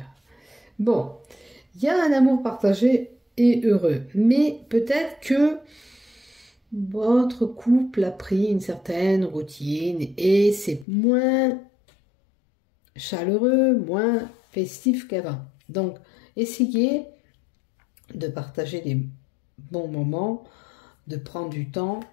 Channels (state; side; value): drops out; right; at 10.9 s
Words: Bon, il y a un amour partagé et heureux, mais peut-être que votre couple a pris une certaine routine et c'est moins chaleureux, moins festif qu'avant. Donc, essayez de partager des bons moments, de prendre du temps